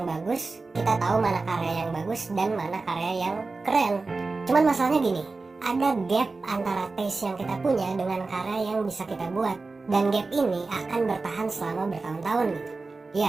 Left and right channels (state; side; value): quieter; left; 3.7 dB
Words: bagus, kita tahu mana karya yang bagus dan mana karya yang keren. Cuman masalahnya gini, ada gap antara taste yang kita punya dengan karya yang bisa kita buat. Dan gap ini akan bertahan selama bertahun-tahun gitu.